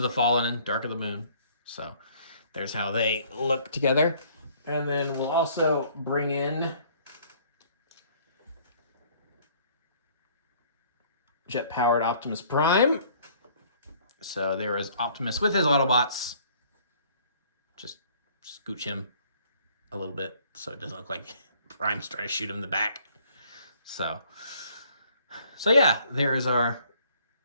the Fallen and Dark of the Moon. So there's how they look together. And then we'll also bring in jet-powered Optimus Prime. So there is Optimus with his Autobots. Just scooch him a little bit so it doesn't look like Prime's trying to shoot him in the back. So yeah, there is our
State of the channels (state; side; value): inverted; both; correlation -0.58